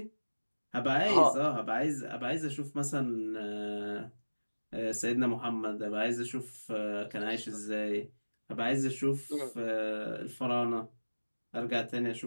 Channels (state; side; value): inverted; both; correlation -1.00